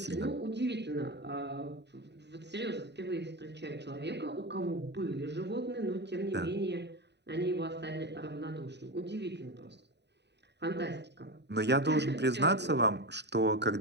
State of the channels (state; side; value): late; left; 0.50 ms